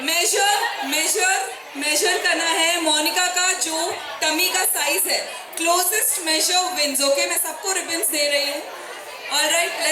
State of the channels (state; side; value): identical; both; correlation 1.00